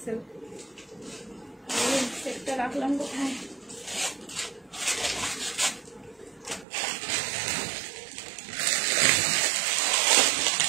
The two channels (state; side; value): drops out; left; at 6.7 s